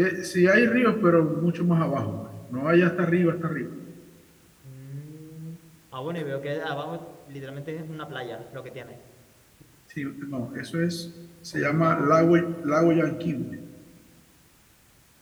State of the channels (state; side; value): identical; both; correlation 1.00